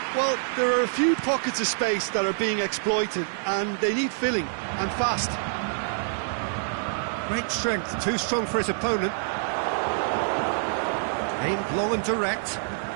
Well, there are a few pockets of space that are being exploited, and they need filling, and fast. Great strength, too strong for his opponent. Aimed long and direct.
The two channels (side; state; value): left; silent; digital silence